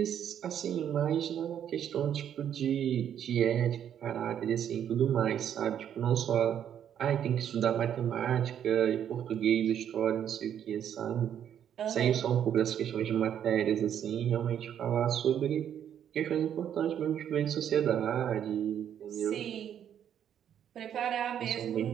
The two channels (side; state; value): left; quieter; 9.5 dB